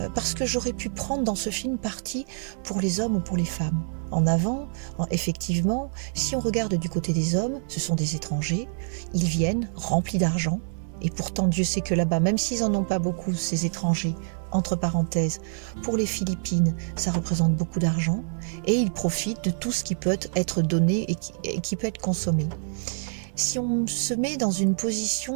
parce que j'aurais pu prendre dans ce film parti pour les hommes ou pour les femmes. En avant, effectivement, si on regarde du côté des hommes, ce sont des étrangers, ils viennent remplis d'argent, et pourtant Dieu sait que là-bas, même s'ils n'en ont pas beaucoup, ces étrangers, entre parenthèses, pour les Philippines, ça représente beaucoup d'argent, et ils profitent de tout ce qui peut être donné et qui peut être consommé. Si on se met dans une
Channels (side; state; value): left; silent; 61 dB below the other